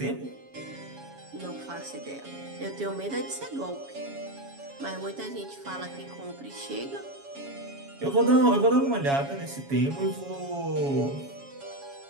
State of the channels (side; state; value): left; late; 7.2 ms